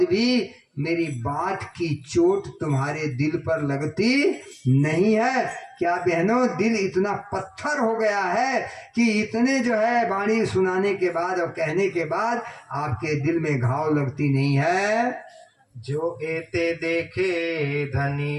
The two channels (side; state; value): both; identical; correlation 1.00